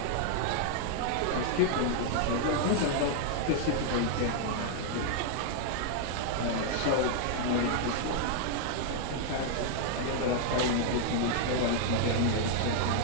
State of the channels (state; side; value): different; both; correlation 0.00